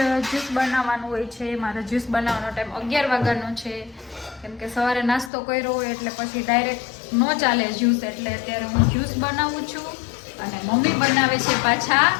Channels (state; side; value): drops out; right; at 5.3 s